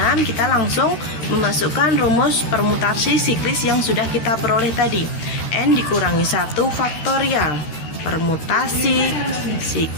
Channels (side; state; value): right; late; 13 ms